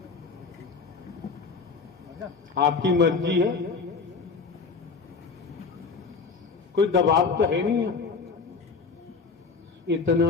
आपकी मर्जी है, कोई दबाव तो है नहीं है।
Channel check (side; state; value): right; quieter; 4.8 dB